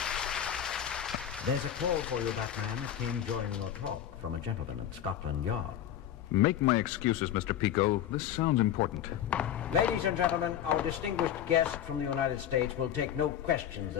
There's a call for you, Batman. It came during your talk from a gentleman at Scotland Yard. Make my excuses, Mr. Pico. This sounds important. Ladies and gentlemen, our distinguished guest from the United States will take no questions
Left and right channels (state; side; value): quieter; right; 10.4 dB